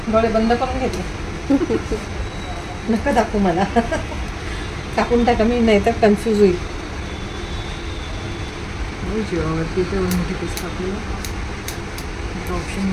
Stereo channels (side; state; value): both; identical; correlation 1.00